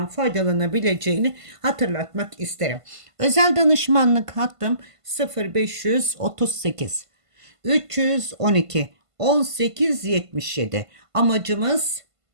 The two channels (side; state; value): left; late; 1.5 ms